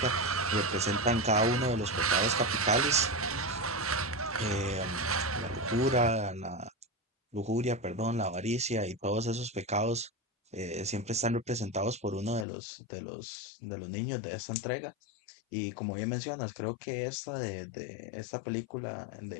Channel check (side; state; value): right; drops out; at 12.5 s